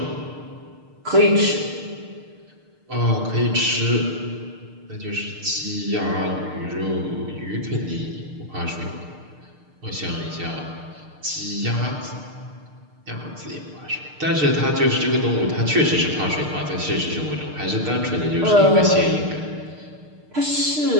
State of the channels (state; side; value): late; left; 6.6 ms